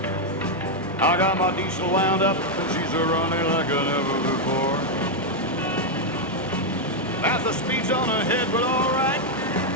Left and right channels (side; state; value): both; normal; correlation 0.00